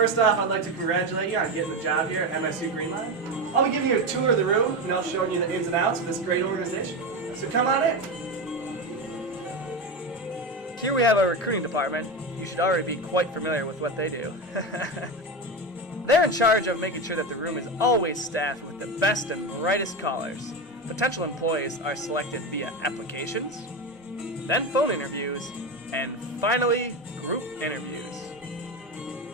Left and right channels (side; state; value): both; normal; correlation 0.18